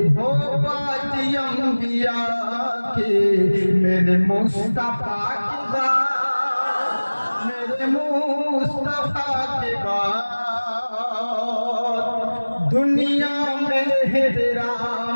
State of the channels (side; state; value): both; inverted; correlation -1.00